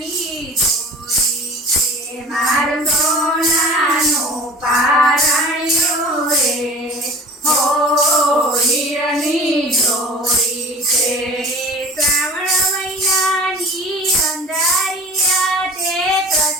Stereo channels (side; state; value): both; normal; correlation 0.41